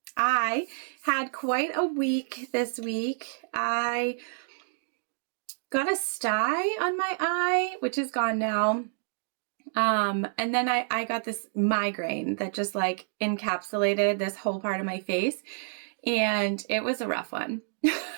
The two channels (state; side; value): silent; left; digital silence